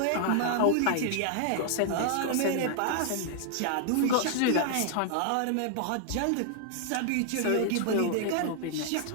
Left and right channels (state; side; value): different; both; correlation 0.00